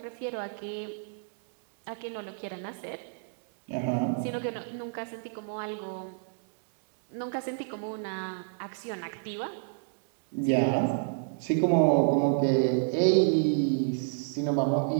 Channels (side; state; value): left; silent; digital silence